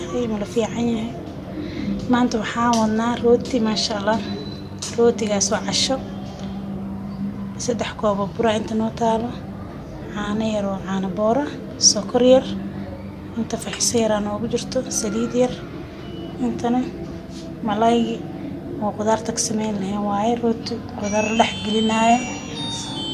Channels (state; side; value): identical; both; correlation 1.00